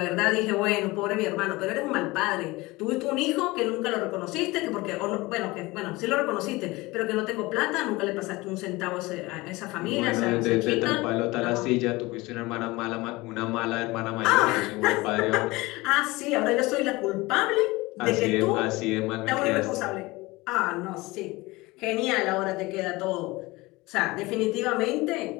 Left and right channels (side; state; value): right; quieter; 21.7 dB